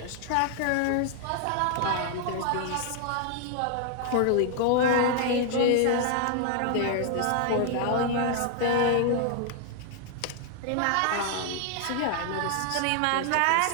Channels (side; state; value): both; different; correlation 0.00